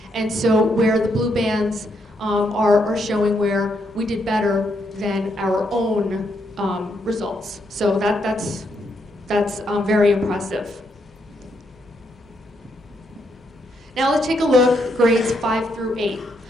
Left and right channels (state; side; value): normal; both; correlation 0.77